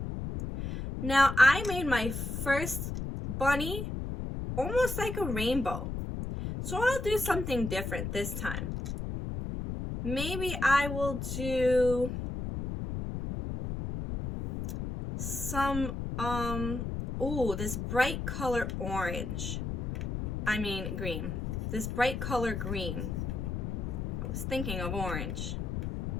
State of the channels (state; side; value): noise; left; rumble, 4 dB below the sound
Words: Now I made my first bunny almost like a rainbow. So I'll do something different this time. Maybe I will do some, this bright color orange. I mean green. This bright color green. I was thinking of orange.